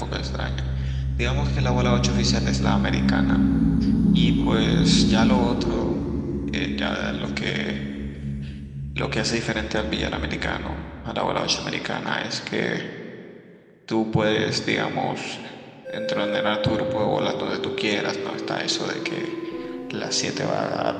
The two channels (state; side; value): identical; both; correlation 1.00